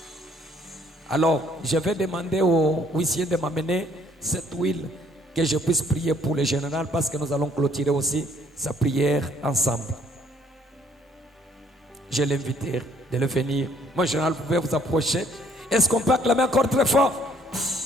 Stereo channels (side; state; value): both; normal; correlation 0.63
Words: Alors, je vais demander au huissier de m'amener cette huile que je puisse prier pour le général parce que nous allons clôturer aussi sa prière ensemble. Je l'invite de le venir. Mon général, vous pouvez vous approcher. Est-ce qu'on peut acclamer encore très fort?